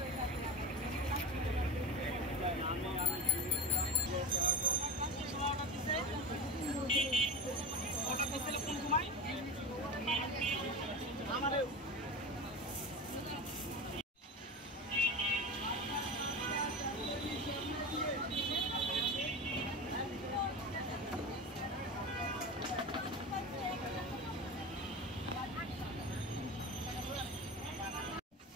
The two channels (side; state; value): both; normal; correlation 0.26